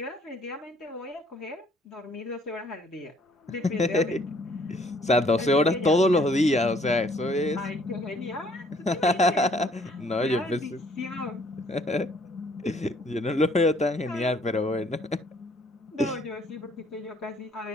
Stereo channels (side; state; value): both; normal; correlation 0.62